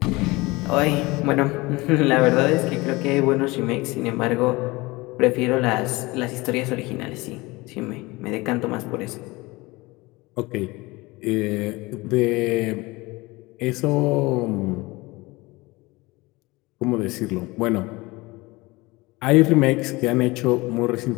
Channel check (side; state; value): right; quieter; 22.5 dB